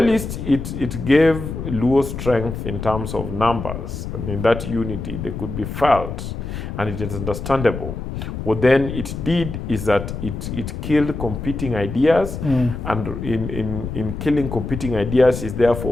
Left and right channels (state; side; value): noise; left; rumble, 6 dB below the sound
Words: it gave Luo strength in terms of numbers, and in that unity they could be felt, and it is understandable. What then it did is that it killed competing ideas, and in killing competing ideas, it